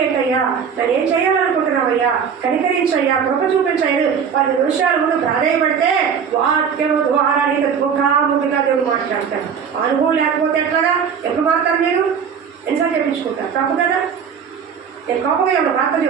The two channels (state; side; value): quieter; left; 7.0 dB